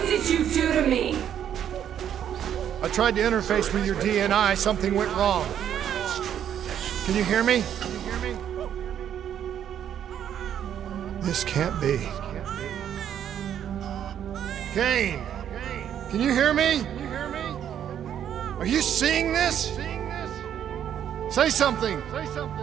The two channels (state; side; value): quieter; left; 9.7 dB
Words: did you do to me? I tried to interface with your DNI. Something went wrong. Can you hear me? This can't be. Kane! Can you hear me? Are you seeing this? Say something!